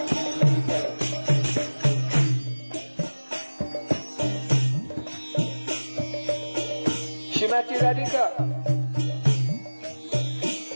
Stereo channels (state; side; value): inverted; both; correlation -1.00